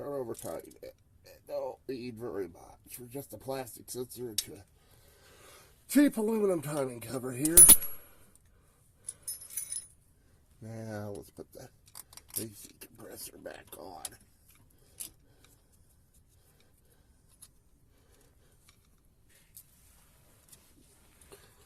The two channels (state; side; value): identical; both; correlation 1.00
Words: over tighten it. It don't need very much. We're just a plastic sensor into a cheap aluminum timing cover here. Now let's put the AC compressor back on.